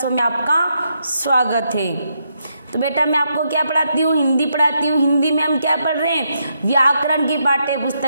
में आपका स्वागत है। तो बेटा मैं आपको क्या पढ़ाती हूँ? हिंदी पढ़ाती हूँ। हिंदी में हम क्या पढ़ रहे हैं? व्याकरण की पाठ्य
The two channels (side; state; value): both; inverted; correlation -0.79